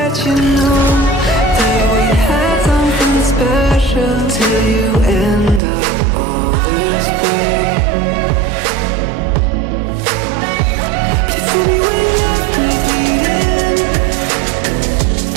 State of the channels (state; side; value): drops out; left; at 5.6 s